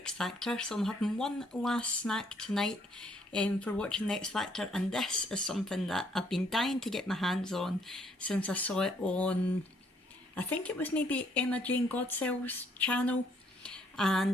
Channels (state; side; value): normal; both; correlation 0.67